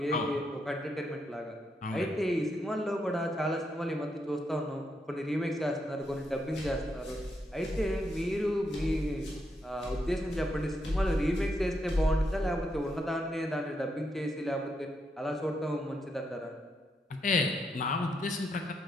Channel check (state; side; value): normal; both; correlation 0.80